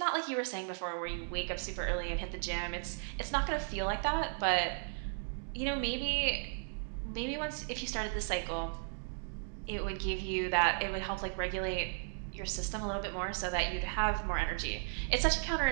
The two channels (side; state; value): left; silent; 54 dB below the other